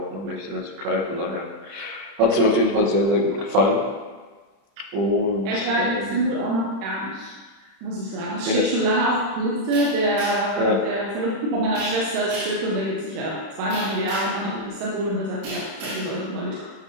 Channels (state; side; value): late; left; 31 ms